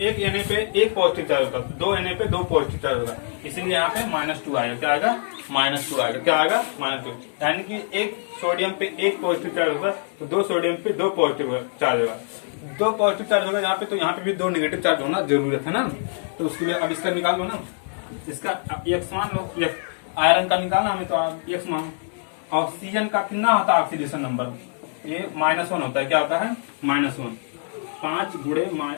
एक Na पे 1 पॉजिटिव चार्ज होगा, 2 Na पे 2 पॉजिटिव चार्ज होगा, इसीलिए यहाँ पे -2 आएगा। क्या आएगा? -2 आएगा। क्या आएगा? -2। यानी कि एक सोडियम पे 1 पॉजिटिव चार्ज होगा तो 2 सोडियम पे 2 पॉजिटिव चार्ज होगा। 2 पॉजिटिव चार्ज होगा यहाँ पे, तो यहाँ पे भी 2 नेगेटिव चार्ज होना जरूरत है ना। तो उसके लिए अब इसका निकाल लो ना, इसका X मान लो। आयरन का निकालना हमें तो X मान। ऑक्सीजन का कितना होता है ऑक्सीडेशन नंबर? ये -1 होता है। क्या होता है? -1। 5 गुणे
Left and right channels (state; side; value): silent; right; 60 dB below the other